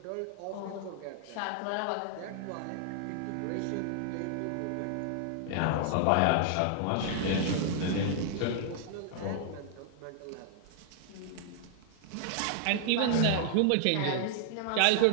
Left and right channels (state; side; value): different; both; correlation -0.01